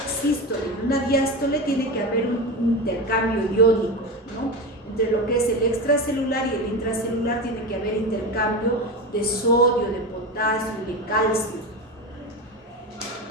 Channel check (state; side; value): normal; both; correlation 0.21